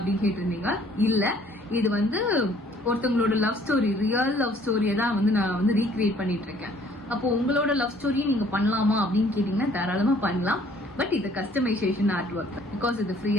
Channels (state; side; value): normal; both; correlation 0.59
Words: கேட்டிருந்தீங்க. இல்ல, இது வந்து ஒருத்தவங்களோட லவ் ஸ்டோரி, ரியல் லவ் ஸ்டோரியை தான் வந்து நான் வந்து ரீக்ரியேட் பண்ணிட்டு இருக்கேன். அப்போ உங்களோட லவ் ஸ்டோரியை நீங்க பண்ணலாமா அப்படின்னு கேட்டீங்கன்னா தாராளமா பண்ணலாம். பட் இது கஸ்டமைசேஷன் ஆர்ட் ஒர்க், பிகாஸ் இது